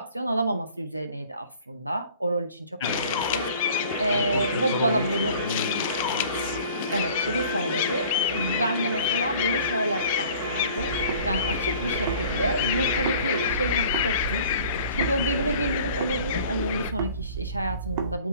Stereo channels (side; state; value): both; inverted; correlation -0.50